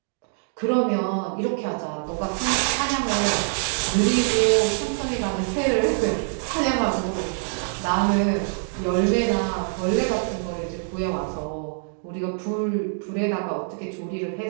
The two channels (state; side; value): silent; left; digital silence